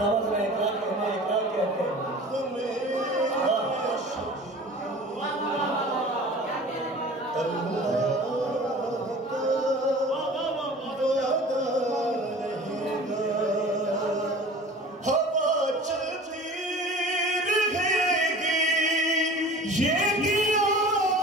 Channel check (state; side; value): normal; both; correlation 0.41